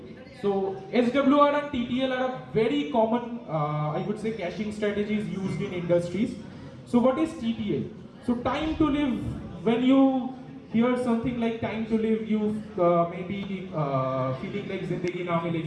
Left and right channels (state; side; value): identical; both; correlation 1.00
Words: So SWR and TTL are a very common, I would say, caching strategies used in industries. So what is TTL? So time to live, when you hear something like time to live, you may be feeling like Zindagi na